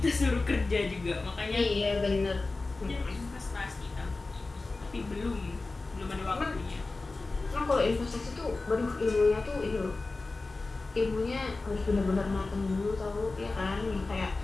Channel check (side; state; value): right; quieter; 3.5 dB